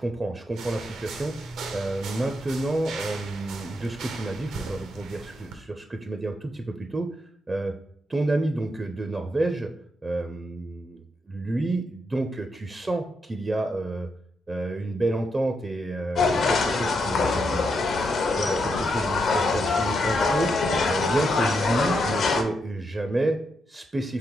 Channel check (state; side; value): normal; both; correlation 0.82